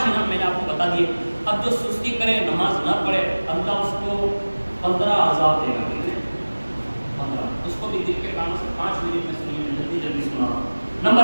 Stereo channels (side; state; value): both; inverted; correlation -1.00